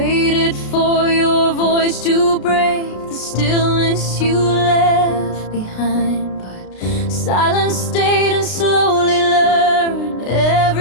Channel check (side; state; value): right; late; 33 ms